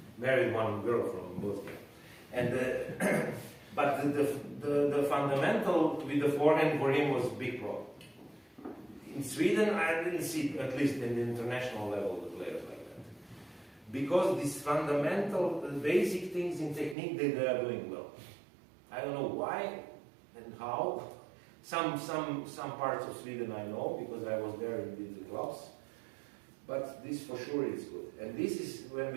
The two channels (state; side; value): drops out; left; at 16.9 s